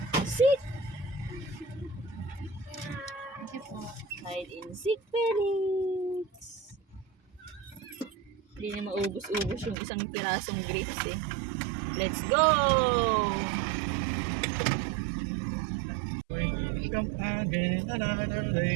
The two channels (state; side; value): drops out; left; at 9.8 s